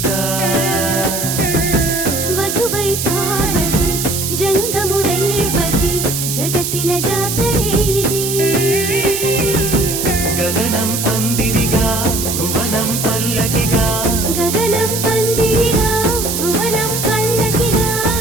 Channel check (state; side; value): noise; right; hiss, 2 dB below the sound